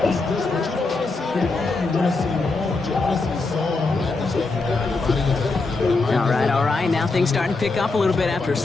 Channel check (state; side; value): quieter; right; 3.7 dB